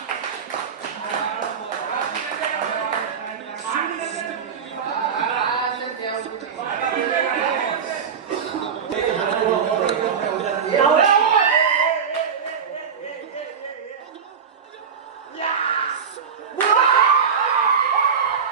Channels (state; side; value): quieter; left; 6.7 dB